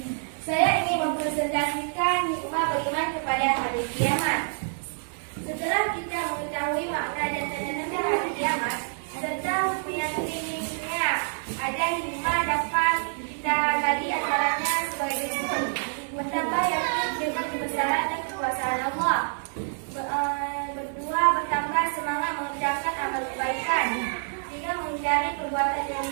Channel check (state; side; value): silent; left; digital silence